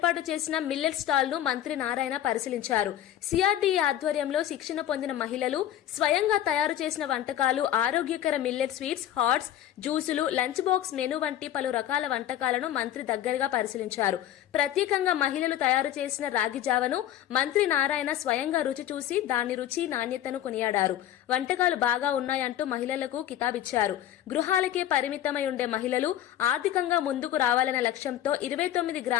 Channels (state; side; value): quieter; right; 11.8 dB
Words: చేసిన మిల్లెట్ స్టాల్ ను మంత్రి నారాయణ పరిశీలించారు. సిఆర్డీఏ ఆధ్వర్యంలో శిక్షణ పొందిన మహిళలు స్వయంగా తయారు చేసిన వంటకాలు, ఆరోగ్యకర మిల్లెట్ స్వీట్స్, హాట్స్, జ్యూసులు, లంచ్ బాక్స్ మెనూ వంటి పలు రకాల వంటకాలను మంత్రి దగ్గరగా పరిశీలించారు. ప్రత్యేకంగా మహిళలు తయారు చేసిన రాగి జావను మంత్రి నారాయణ స్వయంగా రుచి చూసి దాని రుచి, నాణ్యతను కొనియాడారు. వంటకాలు బాగా ఉన్నాయంటూ మహిళలకు కితాబిచ్చారు. గృహాలకే పరిమితమై ఉండే మహిళలు ఆర్థికంగా ముందుకు రావాలనే లక్ష్యంతో 29